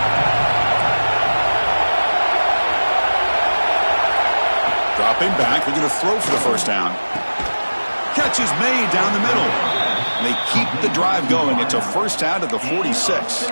Dropping back. They're going to throw for the first down. Catch is made down the middle. And they keep the drive going. It's a first down at the 46.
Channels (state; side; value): inverted; both; correlation -1.00